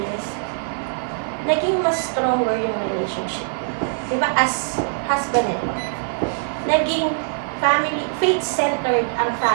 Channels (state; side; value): silent; left; 57 dB below the other